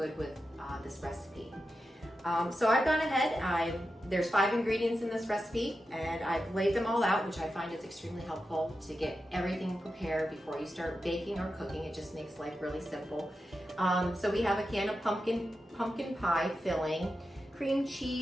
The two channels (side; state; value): both; normal; correlation 0.90